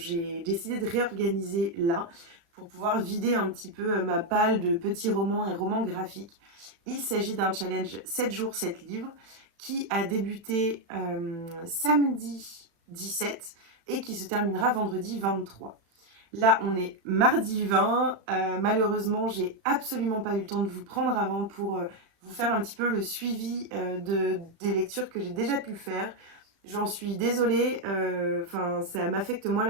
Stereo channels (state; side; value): late; left; 36 ms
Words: décidé de réorganiser là pour pouvoir vider un petit peu ma palle de petits romans et romans graphiques. Il s'agit d'un challenge 7 jours, 7 livres qui a débuté samedi 17 et qui se terminera vendredi 23. Là, on est mardi 20. Malheureusement, j'ai absolument pas eu le temps de vous prendre avant pour vous faire un petit peu le suivi des lectures que j'ai déjà pu faire. J'en suis désolée. Enfin, ça m'affecte moi